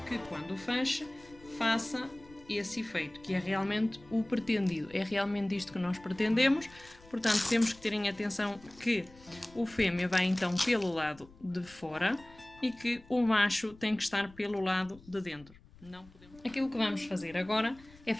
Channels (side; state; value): left; noise; rumble, 24 dB below the sound